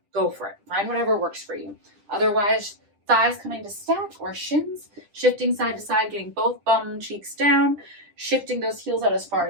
go for it. Find whatever works for you. Otherwise, thighs coming to stack or shins, shifting side to side, getting both bum cheeks down, shifting those heels out as far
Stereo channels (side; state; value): left; late; 10 ms